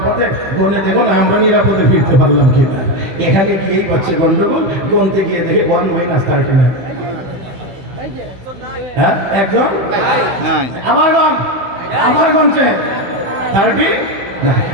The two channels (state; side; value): late; left; 16 ms